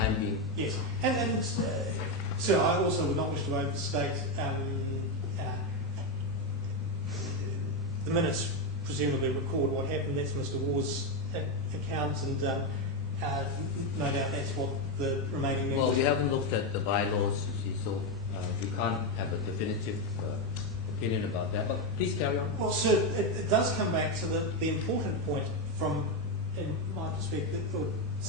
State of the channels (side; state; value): both; normal; correlation 0.08